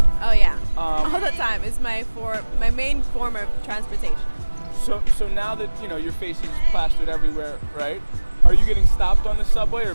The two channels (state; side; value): inverted; both; correlation -1.00